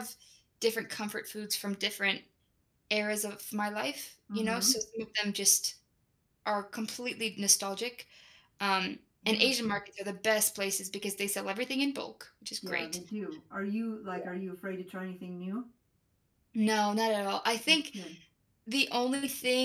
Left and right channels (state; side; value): identical; both; correlation 1.00